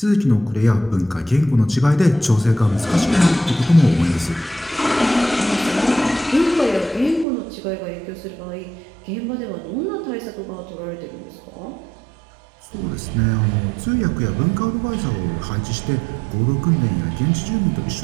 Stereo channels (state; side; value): drops out; left; at 7.2 s